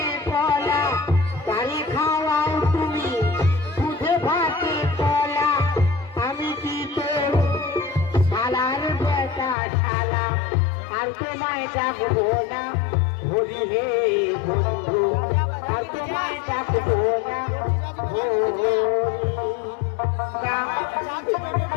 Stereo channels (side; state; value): right; drops out; at 9.6 s